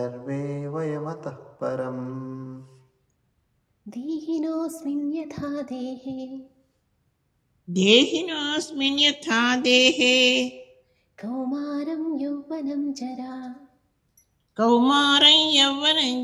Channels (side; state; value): both; identical; correlation 1.00